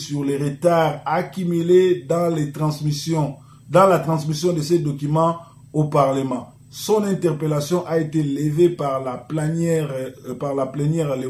les retards accumulés dans la transmission de ces documents au Parlement. Son interpellation a été levée par la plénière le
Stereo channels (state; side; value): identical; both; correlation 1.00